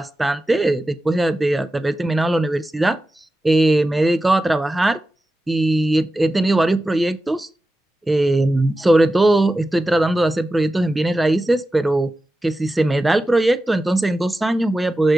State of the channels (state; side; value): normal; both; correlation 0.93